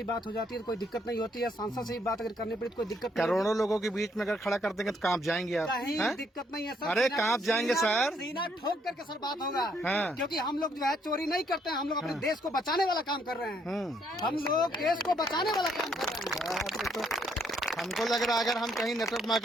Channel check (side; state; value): both; normal; correlation 0.70